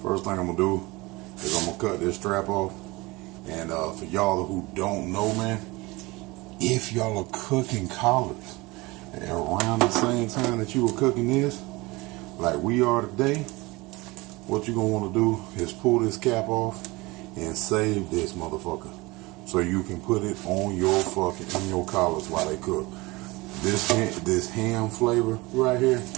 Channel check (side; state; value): left; quieter; 22.8 dB